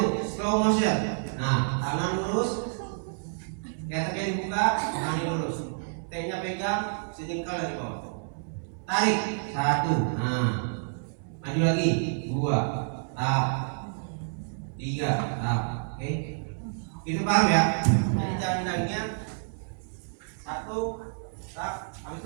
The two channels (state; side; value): silent; left; digital silence